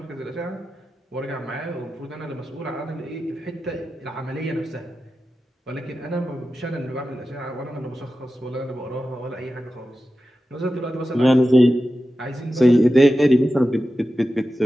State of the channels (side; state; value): both; normal; correlation 0.92